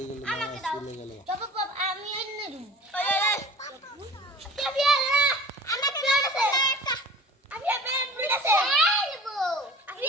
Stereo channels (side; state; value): both; normal; correlation 0.41